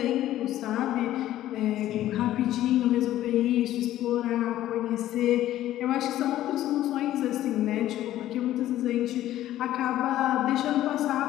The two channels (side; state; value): right; quieter; 13.5 dB